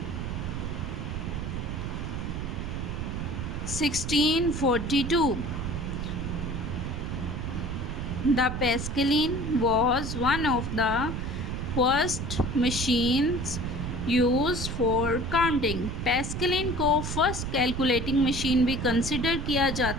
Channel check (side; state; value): right; noise; rumble, 4 dB below the sound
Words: 1642. The Pascaline was one of the first machines used for counting. Pascaline को first calculating machine भी consider किया